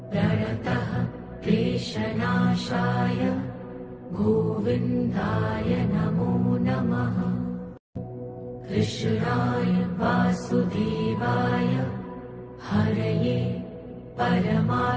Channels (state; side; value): identical; both; correlation 1.00